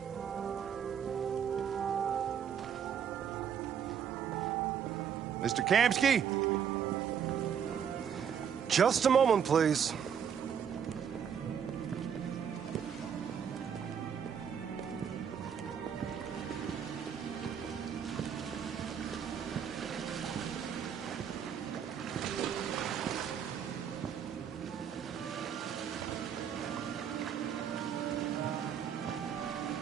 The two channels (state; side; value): quieter; left; 7.9 dB